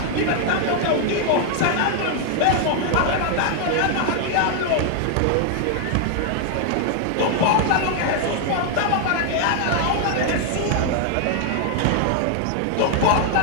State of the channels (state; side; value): different; both; correlation 0.00